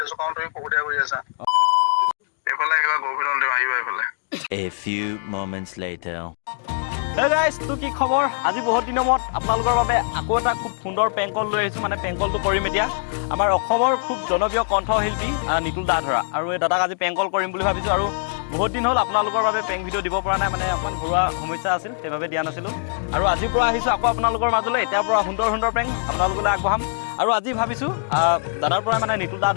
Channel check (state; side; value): silent; right; digital silence